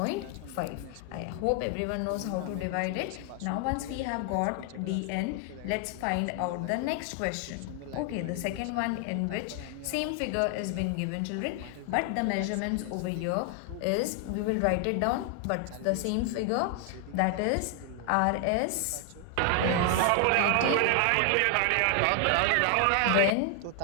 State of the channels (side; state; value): both; different; correlation 0.00